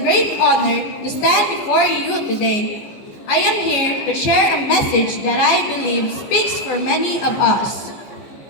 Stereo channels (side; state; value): right; late; 14 ms